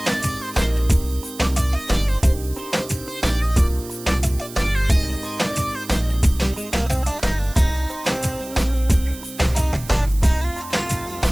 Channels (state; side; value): noise; right; hiss, 16 dB below the sound